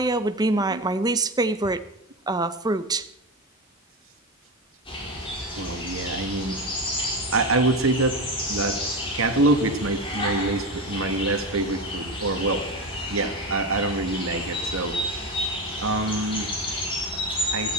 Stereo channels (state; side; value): normal; both; correlation 0.20